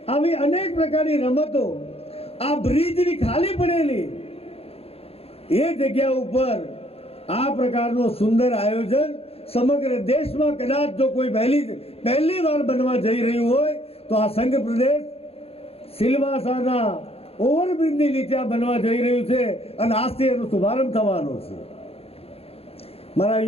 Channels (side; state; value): right; late; 0.29 ms